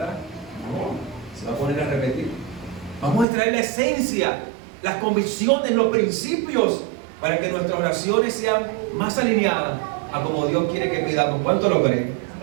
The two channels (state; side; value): drops out; left; at 3.2 s